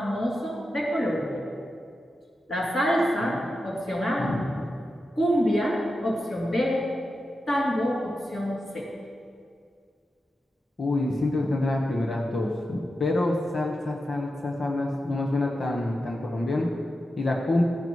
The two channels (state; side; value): normal; both; correlation 0.90